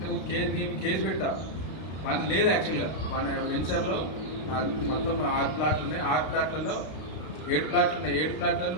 కేసు పెడతా. వాడిని లేదు యాక్చువల్గా. వాడి వెంచర్లో మొత్తం 6 ప్లాట్లు ఉన్నాయి. 6 ప్లాట్లలో 7 ప్లాట్లు ఉన్నాయి. 7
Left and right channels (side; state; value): right; late; 32 ms